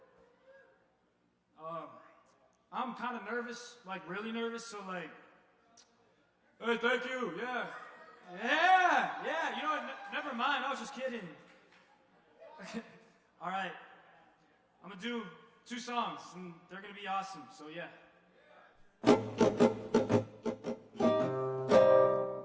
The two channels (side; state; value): both; identical; correlation 1.00